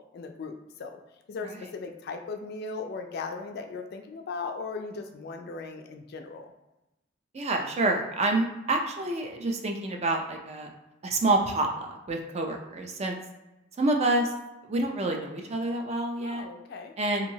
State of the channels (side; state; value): both; normal; correlation 0.14